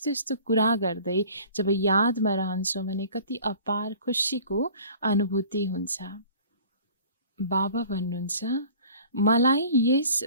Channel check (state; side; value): inverted; both; correlation -0.48